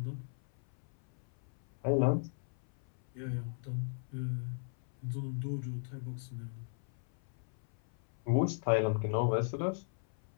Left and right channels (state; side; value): silent; right; 53 dB below the other